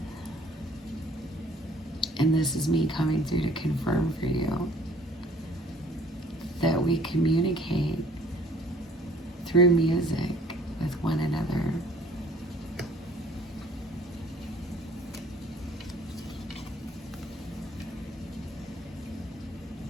And this is me coming through to confirm for you that we communicate through music with one another.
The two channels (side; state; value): both; normal; correlation 0.55